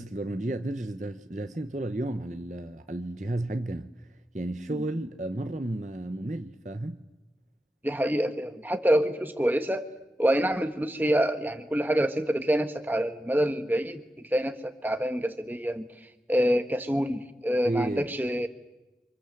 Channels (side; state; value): both; normal; correlation 0.89